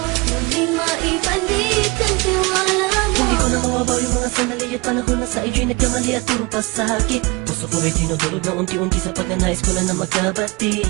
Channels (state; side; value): quieter; left; 25.4 dB